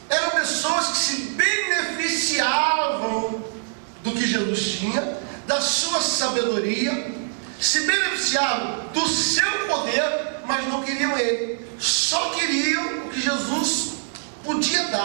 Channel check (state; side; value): silent; left; digital silence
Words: Eram pessoas que se beneficiavam do que Jesus tinha, da sua sabedoria, se beneficiavam do seu poder, mas não queriam ele. Só queriam o que Jesus podia